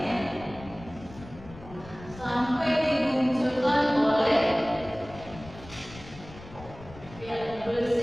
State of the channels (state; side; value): noise; left; rumble, 17 dB below the sound